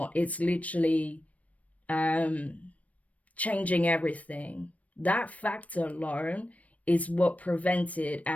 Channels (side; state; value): right; late; 0.067 ms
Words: It's literally changing everything. That factor alone is what prevented